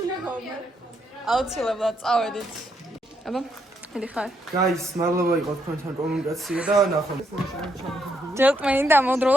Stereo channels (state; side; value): normal; both; correlation 0.76